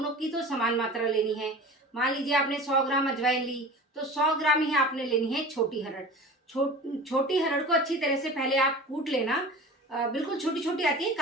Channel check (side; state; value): both; normal; correlation 0.36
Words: की तो समान मात्रा लेनी है। मान लीजिए आपने 100 ग्राम अजवाइन ली तो 100 ग्राम ही आपने लेनी है छोटी हरड़। छोटी हरड़ को अच्छी तरह से पहले आप कूट लेना। बिल्कुल छोटी छोटी आती है,